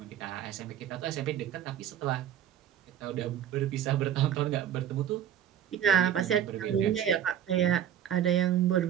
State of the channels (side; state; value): left; quieter; 10.2 dB